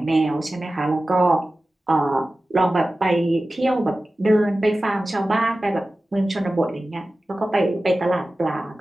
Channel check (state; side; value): normal; both; correlation 0.95